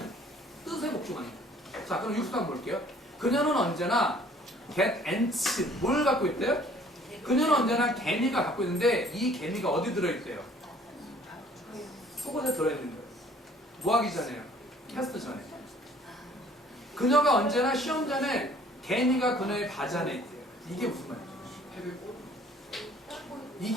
뜻에 복종하는 거예요. 자, 그럼 60번 볼게요. 그녀는 언제나 get ants, 뭘 갖고 있대요? 그녀는 언제나 개미가 갖고 있는데 이 개미가 어디 들어있대요? 속옷에 들어있는 거예요. 뭐 하기 전에요? 테스트 전에. 그녀가 언제나 시험 전에 개미가 그녀의 바지안에 있대요. 이게 무슨 말이에요?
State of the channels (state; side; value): normal; both; correlation 0.56